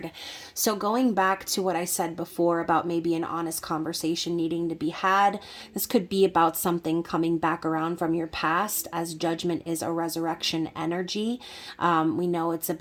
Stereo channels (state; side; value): identical; both; correlation 1.00